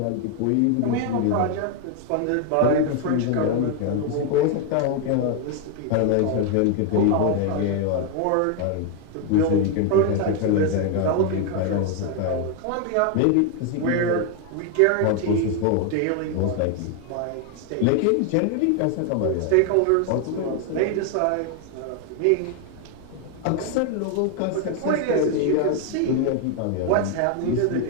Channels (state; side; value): different; both; correlation 0.01